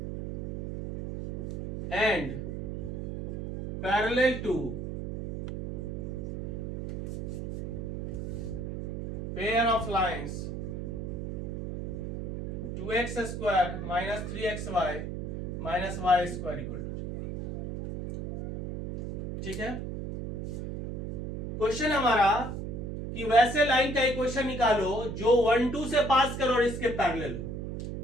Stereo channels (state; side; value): noise; right; hum, 5 dB below the sound